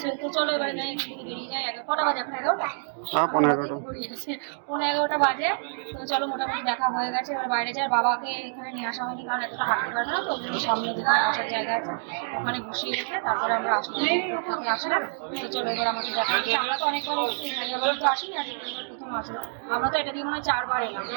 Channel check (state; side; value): silent; left; digital silence